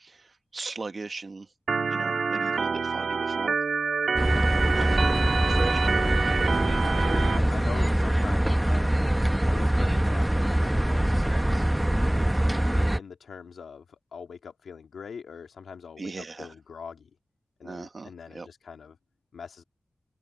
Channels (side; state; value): both; normal; correlation 0.98